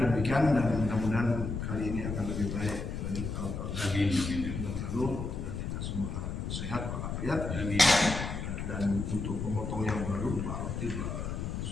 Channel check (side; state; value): left; noise; rumble, 4 dB below the sound